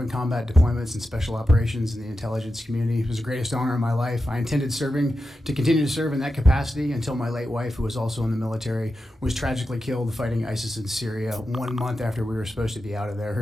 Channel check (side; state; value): both; normal; correlation 0.90